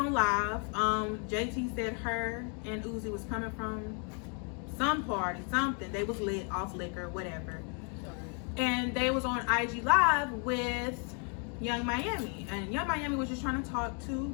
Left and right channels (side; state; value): right; quieter; 38.6 dB